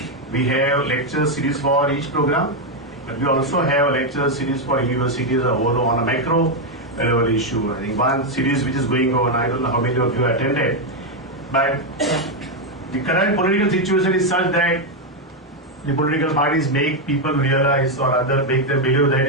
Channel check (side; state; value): both; normal; correlation 0.03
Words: We have lecture series for each program, but we also have a lecture series for universities on a macro level issue. I think one series which is going on, I don't know how many of you attended, but the current political situation is such that the political parties make people realize or rather make them believe that